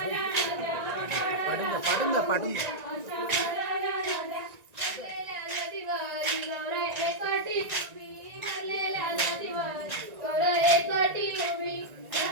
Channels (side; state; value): left; late; 1.9 ms